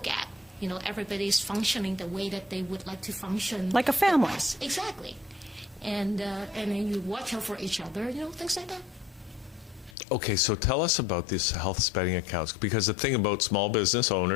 at. Everybody's functioning the way that they would like to function. Like a family. the best. Exactly. And then you watch out for each other, things like that. Okay, so tell us about these health spending accounts, because the thing about small business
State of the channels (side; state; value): right; drops out; at 10.0 s